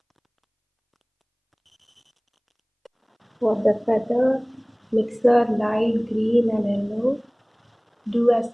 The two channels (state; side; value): identical; both; correlation 1.00